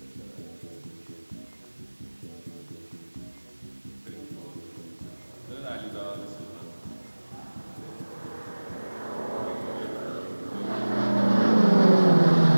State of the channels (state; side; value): inverted; both; correlation -1.00